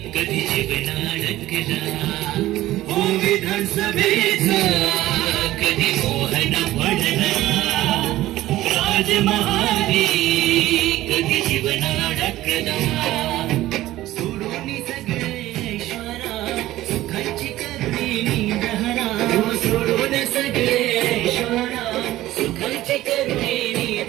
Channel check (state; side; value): quieter; left; 15.6 dB